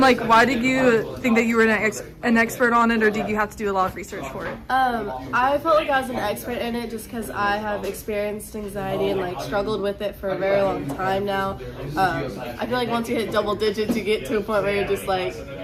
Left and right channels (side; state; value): both; identical; correlation 1.00